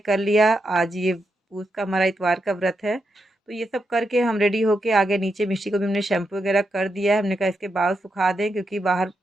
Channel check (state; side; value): normal; both; correlation 0.84